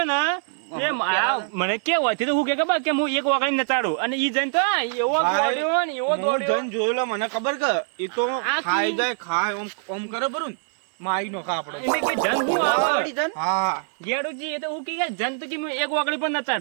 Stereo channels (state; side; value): silent; left; 62 dB below the other